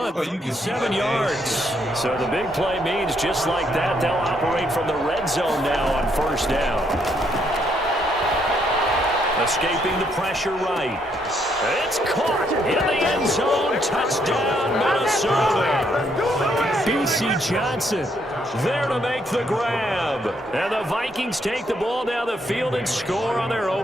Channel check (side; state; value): both; normal; correlation 0.73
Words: 7 yards. So the big play means just like that, they'll operate from the red zone now on 1st down. Escaping the pressure right. It's caught in the end zone. Touchdown, Minnesota. B.C. Johnson there to make the grab. And the Vikings take the ball down the field and score on their